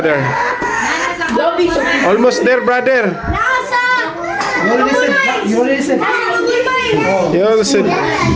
Almost there, brother. Nasa! You already said. You already said. Nasa Google Mind. You also,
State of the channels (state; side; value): identical; both; correlation 1.00